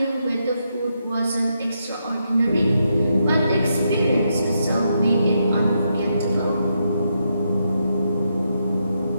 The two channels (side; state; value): both; inverted; correlation -0.81